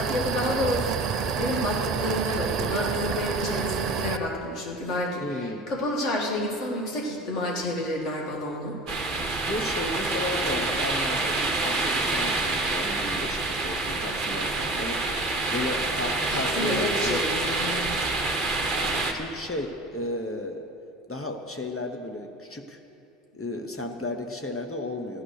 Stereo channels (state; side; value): normal; both; correlation 0.37